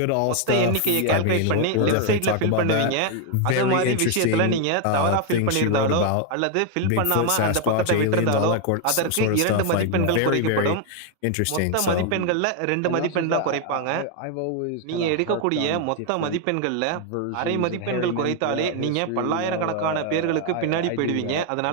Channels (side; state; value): both; different; correlation 0.01